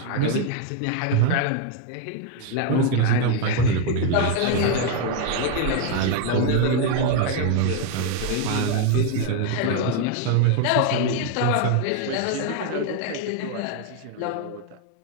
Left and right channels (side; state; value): both; different; correlation 0.01